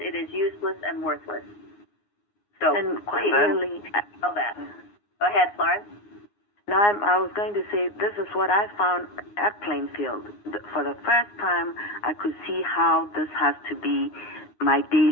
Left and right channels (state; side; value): late; right; 9.7 ms